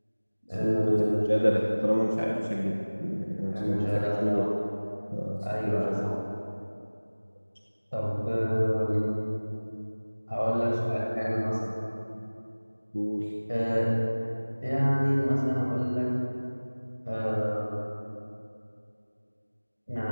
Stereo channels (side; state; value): both; inverted; correlation -1.00